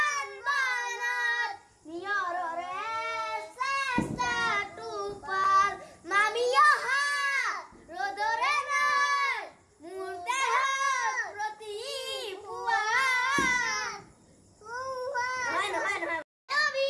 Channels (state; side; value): identical; both; correlation 1.00